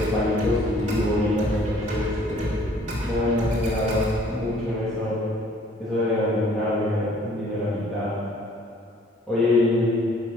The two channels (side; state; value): both; normal; correlation 0.58